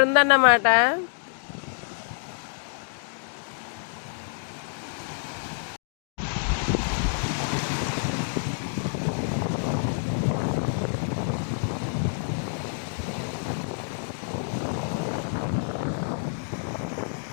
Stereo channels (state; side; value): silent; right; digital silence